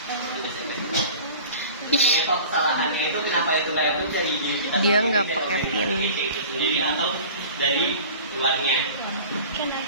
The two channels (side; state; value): both; inverted; correlation -0.41